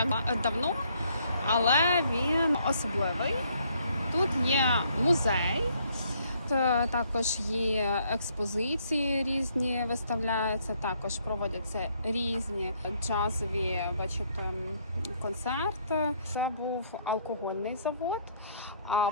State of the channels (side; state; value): both; inverted; correlation -0.67